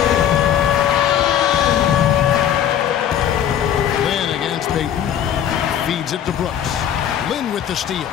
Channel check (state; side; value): quieter; right; 9.8 dB